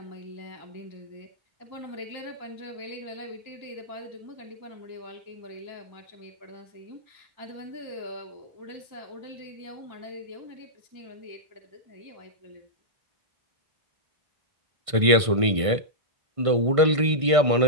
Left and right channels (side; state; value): left; late; 1.5 ms